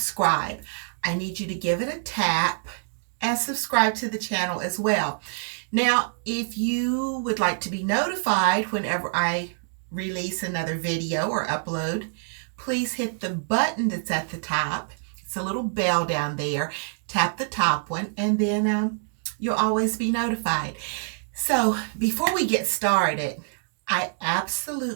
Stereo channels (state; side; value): silent; left; digital silence